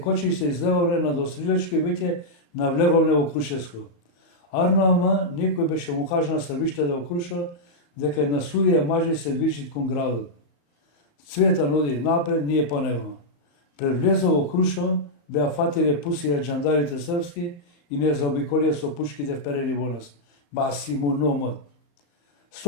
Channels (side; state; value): right; late; 34 ms